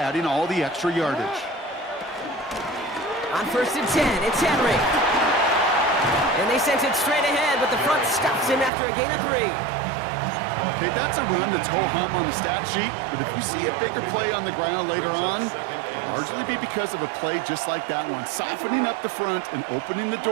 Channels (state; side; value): drops out; left; at 8.7 s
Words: all the extra yardage. On 1st and 10, it's Henry. And they sent it straight ahead, but the front stops him after a gain of 3. Okay, that's a run that's ho-hum on the stat sheet, but if you see a bigger play on the ground later on, it'll largely be because of a play just like that one, softening up the front and opening the